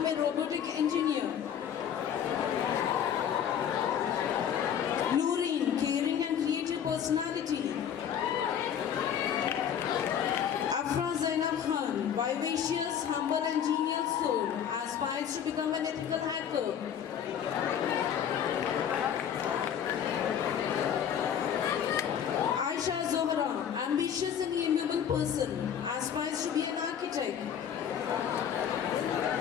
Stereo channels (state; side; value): quieter; right; 8.8 dB